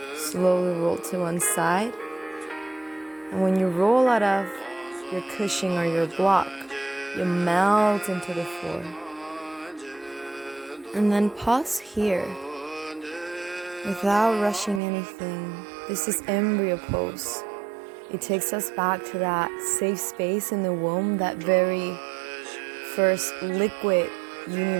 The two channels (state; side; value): drops out; left; at 14.8 s